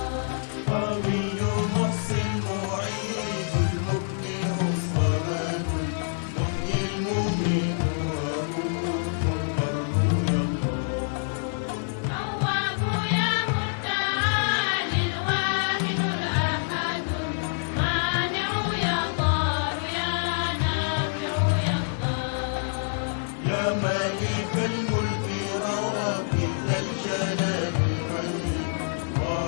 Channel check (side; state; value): right; silent; digital silence